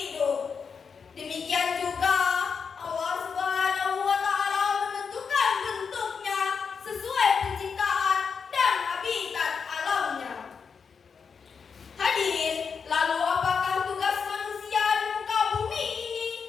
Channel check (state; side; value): quieter; right; 6.0 dB